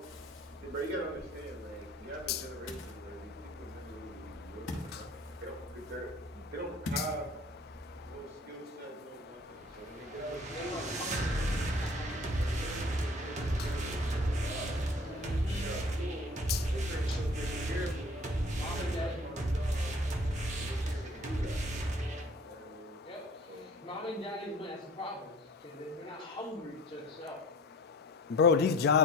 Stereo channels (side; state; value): both; normal; correlation 0.48